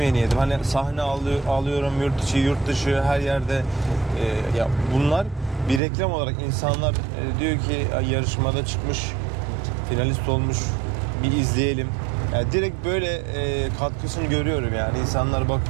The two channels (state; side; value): drops out; left; at 5.8 s